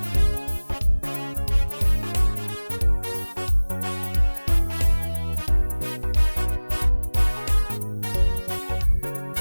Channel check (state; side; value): inverted; both; correlation -1.00